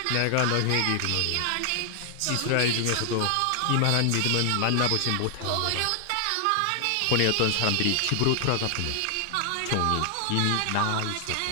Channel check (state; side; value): different; both; correlation 0.00